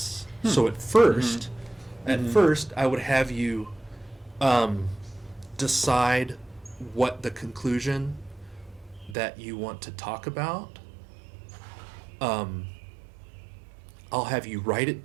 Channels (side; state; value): left; drops out; at 9.2 s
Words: So at first, I would have you decide what the conclusion that you want to talk about. I'll have you write it